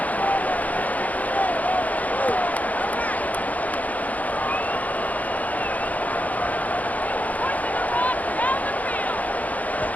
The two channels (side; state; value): right; late; 0.075 ms